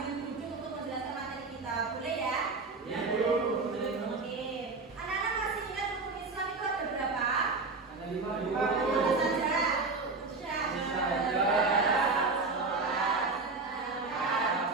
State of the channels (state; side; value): quieter; left; 3.9 dB